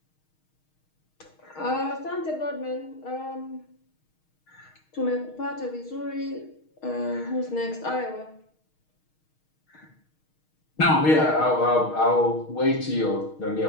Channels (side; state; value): right; late; 6.4 ms